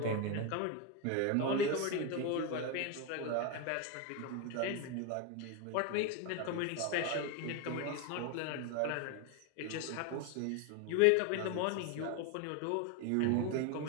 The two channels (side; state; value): both; different; correlation 0.02